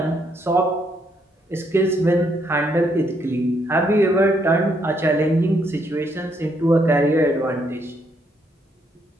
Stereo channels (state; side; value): normal; both; correlation 0.73